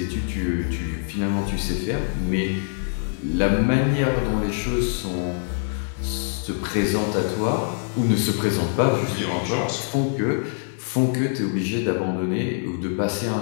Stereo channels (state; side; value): silent; right; 63 dB below the other